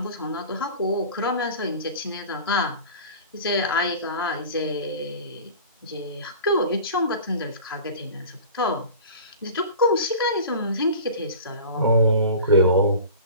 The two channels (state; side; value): inverted; both; correlation -0.39